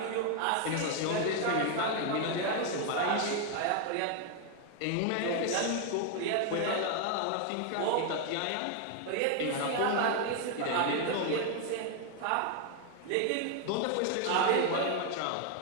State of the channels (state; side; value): different; both; correlation 0.00